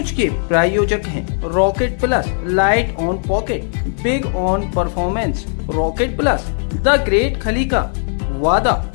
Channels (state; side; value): silent; right; 57 dB below the other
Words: के प्रायोजक हैं rocket plus, light on pocket, big on performance. Rocket plus, the great खली का वादा,